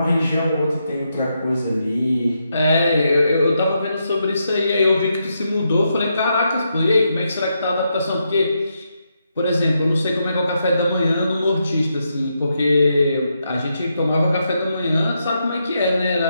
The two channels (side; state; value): both; inverted; correlation -0.82